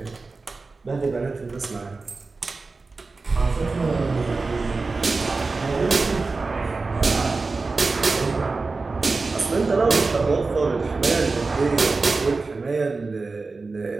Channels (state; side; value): quieter; left; 3.9 dB